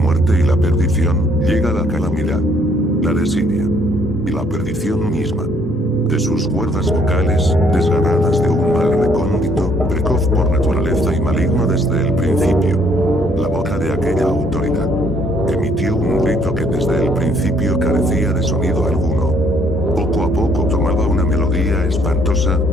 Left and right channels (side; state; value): both; normal; correlation 0.65